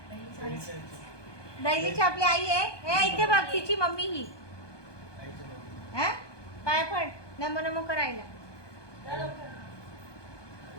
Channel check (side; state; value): right; late; 1.2 ms